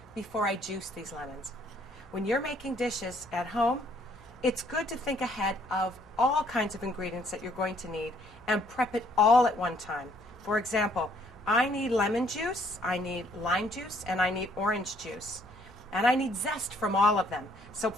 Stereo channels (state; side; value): noise; left; hum, 28 dB below the sound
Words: before I juice these lemons. When you're making dishes at home, it's good to think ahead of all kinds of ingredients that you're going to need and prep it all at one time. For example, I need lemon juice, I need lime juice, and I need orange juice. And I need zest from all of them. So